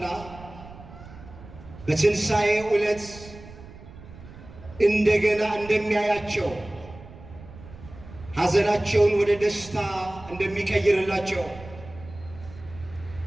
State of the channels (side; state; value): right; noise; rumble, 17 dB below the sound